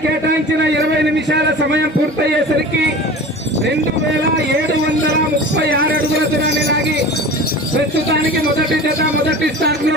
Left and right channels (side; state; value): both; normal; correlation 0.36